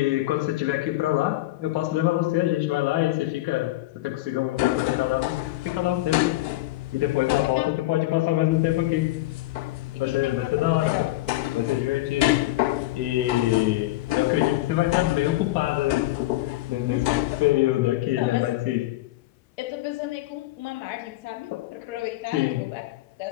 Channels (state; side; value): quieter; right; 17.5 dB